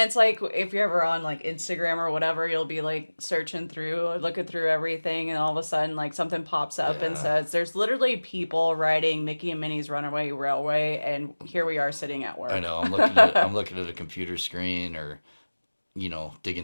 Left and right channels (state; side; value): inverted; both; correlation -1.00